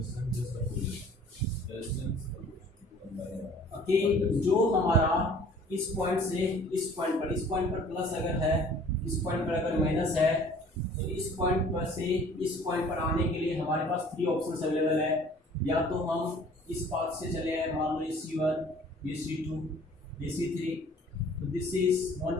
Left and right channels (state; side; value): normal; both; correlation 0.51